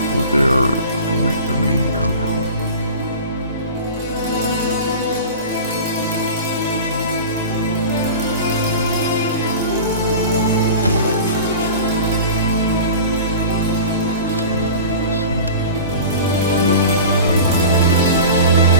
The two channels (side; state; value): both; inverted; correlation -0.35